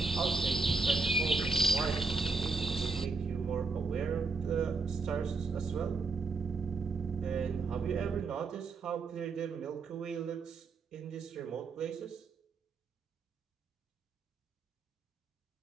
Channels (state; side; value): quieter; left; 4.2 dB